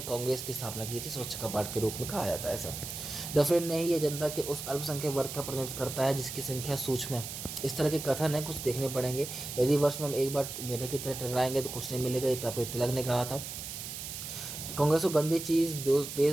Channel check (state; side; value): noise; right; hiss, 8 dB below the sound